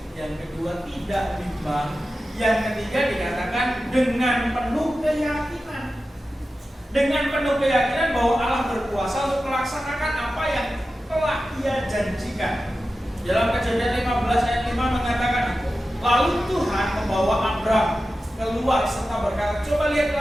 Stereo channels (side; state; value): both; normal; correlation 0.93